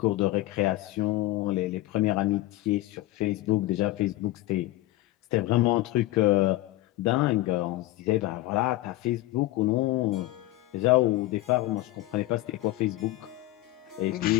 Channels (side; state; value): right; quieter; 17.1 dB